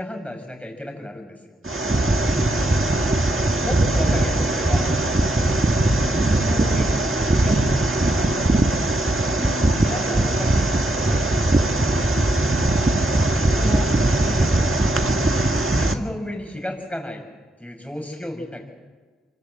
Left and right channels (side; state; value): both; normal; correlation 0.79